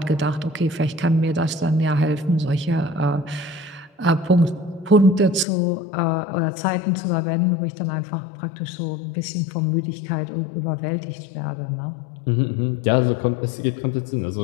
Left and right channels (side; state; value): right; drops out; at 5.5 s